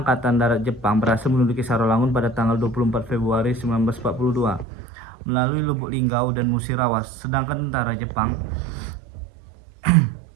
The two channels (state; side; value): drops out; left; at 4.7 s